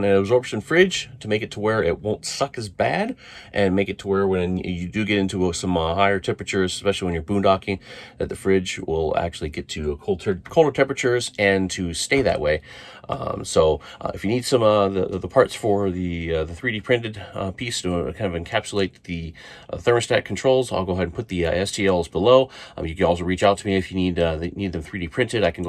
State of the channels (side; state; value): both; identical; correlation 1.00